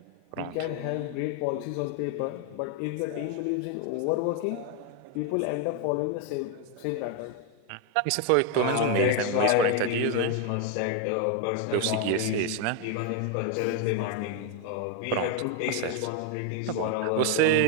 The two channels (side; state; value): both; different; correlation 0.01